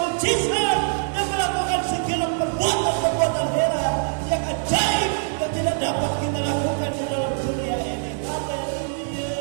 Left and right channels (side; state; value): left; silent; 63 dB below the other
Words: Dia melakukan segala perbuatan-perbuatan heran yang ajaib yang tidak dapat kita lakukan di dalam dunia ini. Haleluya.